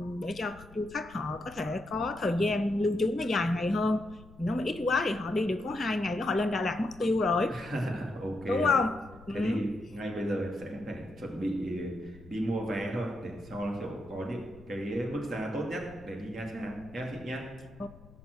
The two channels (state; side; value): noise; left; rumble, 21 dB below the sound